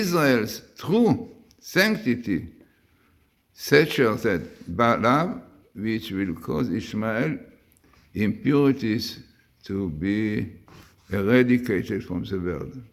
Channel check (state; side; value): identical; both; correlation 1.00